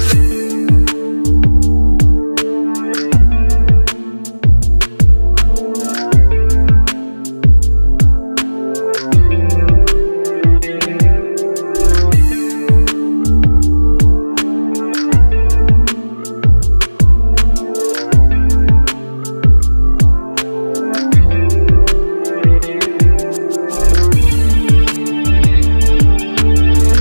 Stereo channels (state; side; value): inverted; both; correlation -1.00